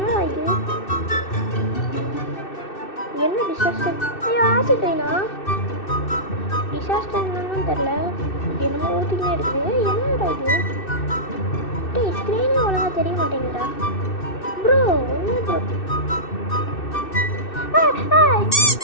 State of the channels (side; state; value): right; late; 2.6 ms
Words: இது என்ன டிசாஸ்டர். ஐயோ ஆசிட் ஐனா டிசாஸ்டர் என்னன்னு தெரில. என்னமோ ஊற்றிக்கினே இருக்குது. என்னடா இது டேய் ஸ்க்ரீனே ஒழுங்காக தெரிய மாட்டேங்குதா ப்ரோ. என்ன ப்ரோ